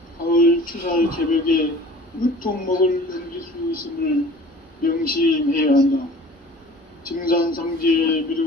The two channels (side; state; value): both; normal; correlation 0.45